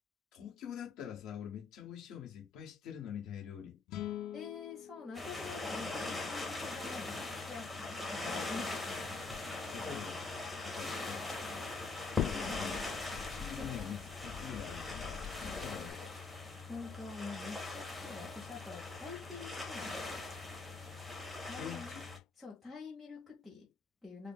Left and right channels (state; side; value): quieter; right; 4.0 dB